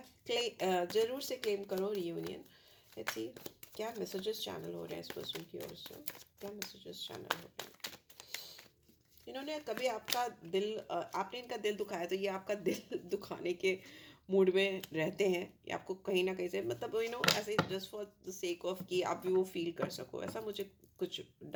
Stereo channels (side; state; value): both; identical; correlation 1.00